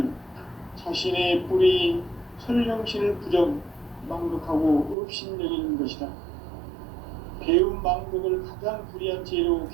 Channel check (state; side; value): drops out; left; at 5.0 s